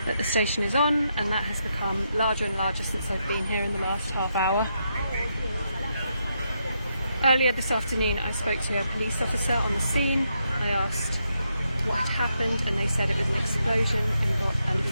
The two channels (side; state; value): both; inverted; correlation -0.81